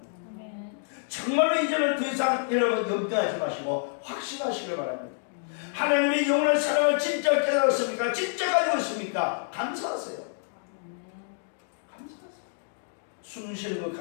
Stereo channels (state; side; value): silent; right; 59 dB below the other